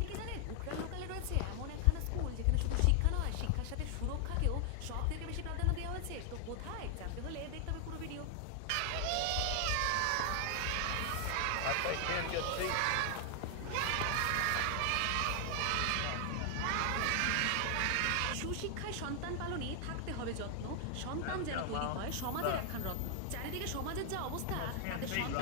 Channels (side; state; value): both; different; correlation 0.00